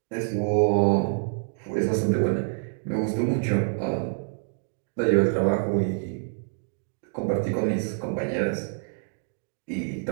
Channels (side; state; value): left; silent; digital silence